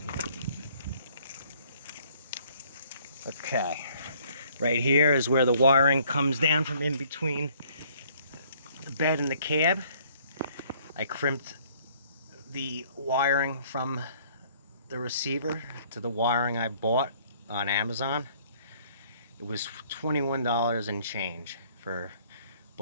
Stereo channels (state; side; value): inverted; both; correlation -0.60